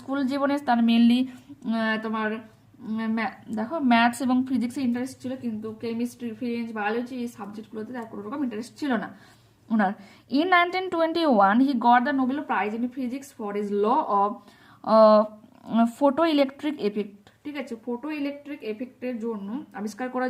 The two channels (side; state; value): both; identical; correlation 1.00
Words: জীবনে তার মেনলি তোমার দেখো ম্যাথস এবং ফিজিক্সে ইন্টারেস্ট ছিল, কিন্তু কেমিস্ট্রি, ফ্রেঞ্চ, বায়োলজি এই সাবজেক্টগুলোতে তার কোনো রকম ইন্টারেস্ট ছিল না ওনার। In 1921 he got the Nobel Prize in physics for his law of photoelectric effect. ঠিক আছে, ফটো ইলেকট্রিক এফেক্টের জন্য আবিষ্কার